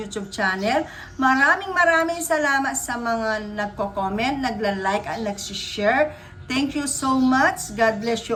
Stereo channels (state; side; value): identical; both; correlation 1.00